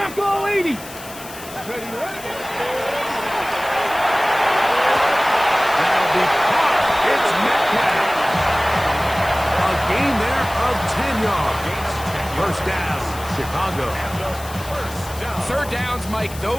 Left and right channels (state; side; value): noise; left; hiss, 15 dB below the sound